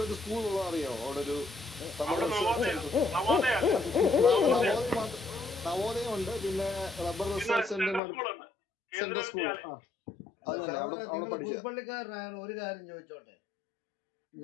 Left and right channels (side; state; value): right; drops out; at 8.0 s